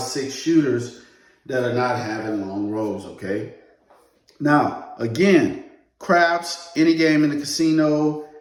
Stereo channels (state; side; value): identical; both; correlation 1.00